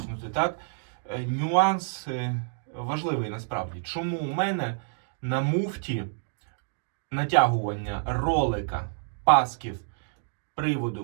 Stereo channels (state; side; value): silent; left; digital silence